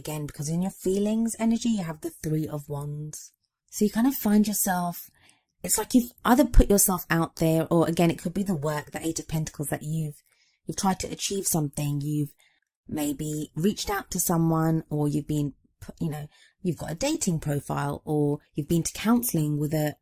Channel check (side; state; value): both; identical; correlation 1.00